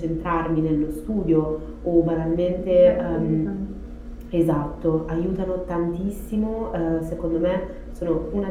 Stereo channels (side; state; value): both; identical; correlation 1.00